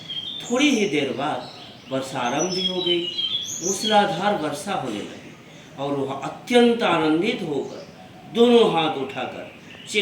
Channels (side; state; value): both; identical; correlation 1.00